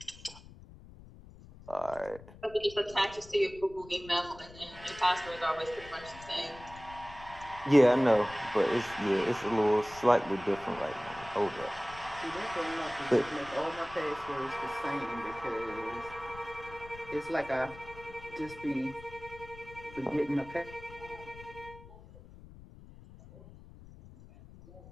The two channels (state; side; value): noise; left; rumble, 18 dB below the sound